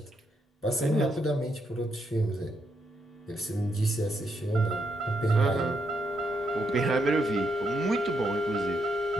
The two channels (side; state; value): both; normal; correlation 0.79